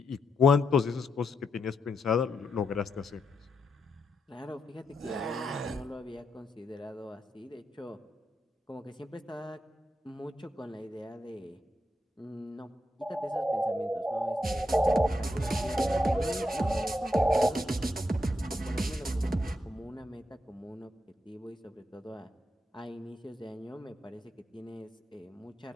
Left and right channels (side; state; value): both; normal; correlation 0.83